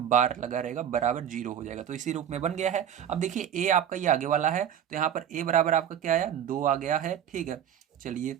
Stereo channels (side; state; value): left; quieter; 9.6 dB